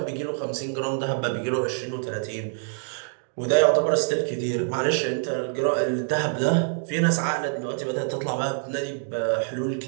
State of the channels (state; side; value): silent; left; digital silence